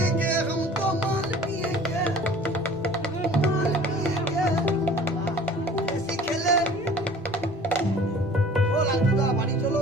হাম তো মাল পিয়েগে, মাল পিয়েগে। বেশি খেলে ও লালটুদা বাড়ি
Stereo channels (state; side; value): normal; both; correlation 0.47